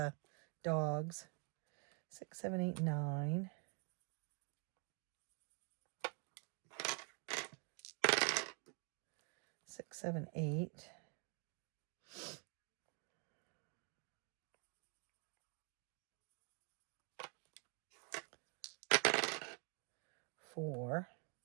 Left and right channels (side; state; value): left; quieter; 38.3 dB